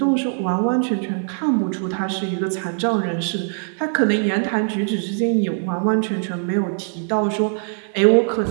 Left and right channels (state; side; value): silent; left; digital silence